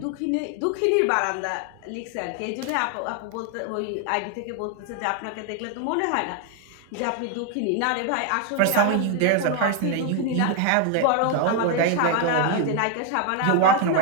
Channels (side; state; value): both; different; correlation 0.00